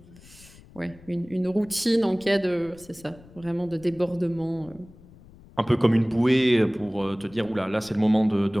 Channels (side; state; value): left; noise; rumble, 23 dB below the sound